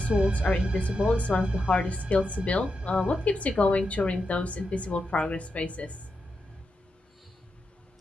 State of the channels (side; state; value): both; normal; correlation 0.87